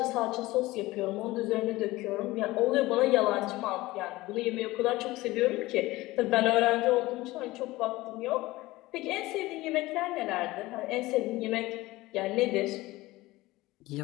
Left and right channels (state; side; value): quieter; right; 19.1 dB